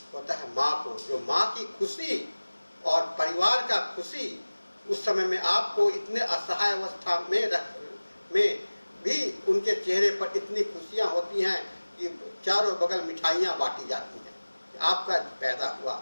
होता है माँ को, जो माँ की खुशी और परिवार का खुशी उस समय में आपको इतने असहाय अवस्था में भी उनके चेहरे पर इतनी खुशियां होती हैं कि चारों बगल मिठाइयां बांटी जाती हैं कि आपका पैदा हुआ,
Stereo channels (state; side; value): inverted; both; correlation -1.00